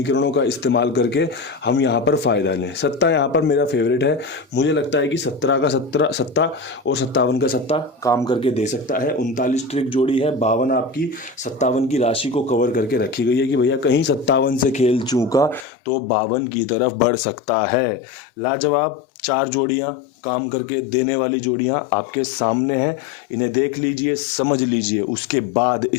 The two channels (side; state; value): right; drops out; at 15.7 s